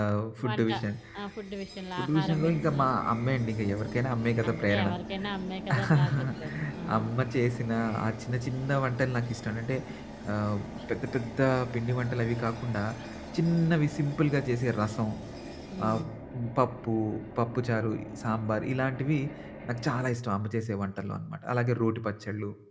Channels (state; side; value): identical; both; correlation 1.00